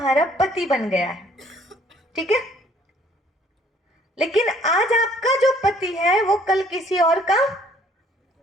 पति बन गया है, ठीक है? लेकिन आज आपका जो पति है वो कल किसी और का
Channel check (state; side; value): normal; both; correlation 0.60